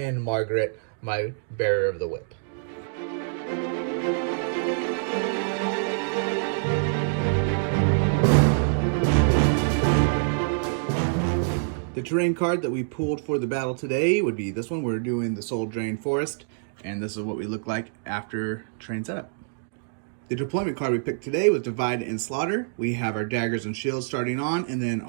Margaret, my bearer of the whip. The terrain card that we pulled for the battle today would be this one. We're doing the Soul Drain Forest, and this is what we look like after terrain setup. The deployment card we picked today was Divide and Slaughter. We have our daggers and shields starting on, and then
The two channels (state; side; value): silent; left; digital silence